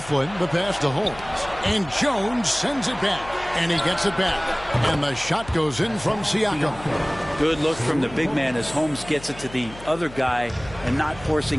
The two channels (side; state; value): left; noise; hum, 17 dB below the sound